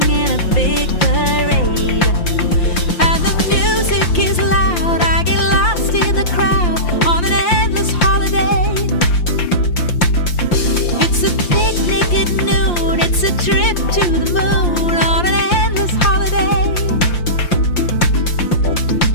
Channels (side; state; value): right; late; 5.7 ms